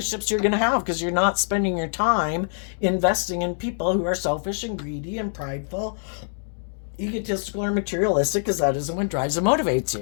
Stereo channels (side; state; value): right; silent; digital silence